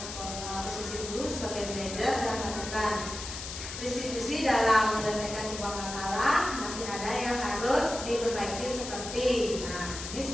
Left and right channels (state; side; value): noise; left; hiss, 8 dB below the sound